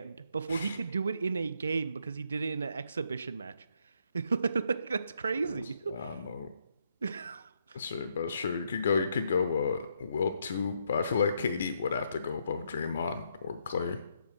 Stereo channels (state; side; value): inverted; both; correlation -0.75